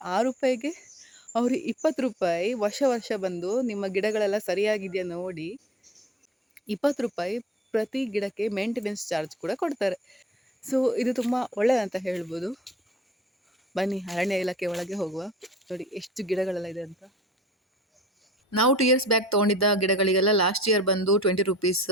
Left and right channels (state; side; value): normal; both; correlation 0.51